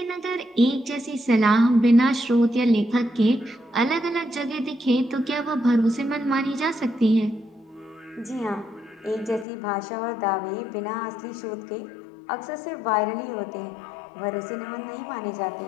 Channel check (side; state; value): right; drops out; at 9.5 s